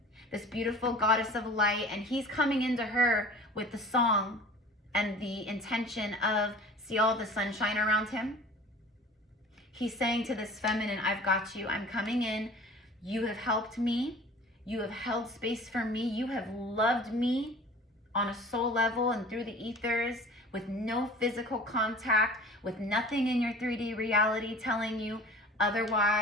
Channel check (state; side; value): normal; both; correlation 0.43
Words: this beautiful goddess of light, and he's coming into her with the song and the intention of, see all the sunshine around him? He's saying to this feminine, I've got you, I'm coming in, you have helped me, you have held space for me, you have loved me on a soul level and through the ethers with no physical contact, with nothing in your 3D reality telling you